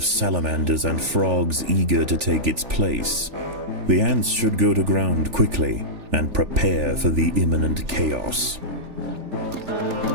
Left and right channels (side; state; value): left; late; 3.4 ms